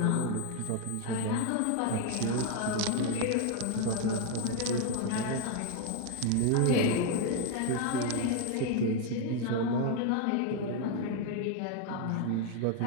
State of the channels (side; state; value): both; different; correlation 0.00